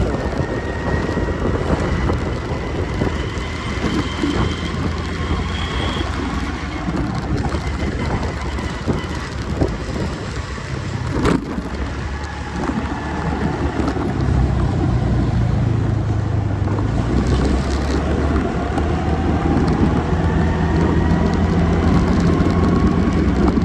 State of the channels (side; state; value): both; identical; correlation 1.00